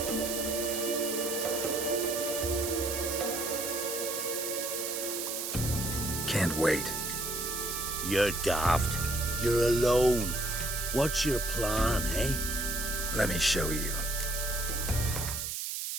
Can't wait. You're daft. You're alone. What's your plan, eh? Let me show you.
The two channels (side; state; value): right; noise; hiss, 3 dB below the sound